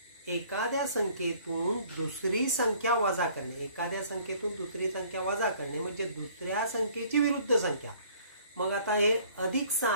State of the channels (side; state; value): both; inverted; correlation -0.56